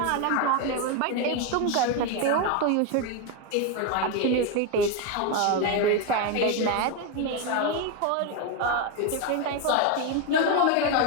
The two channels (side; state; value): both; different; correlation 0.02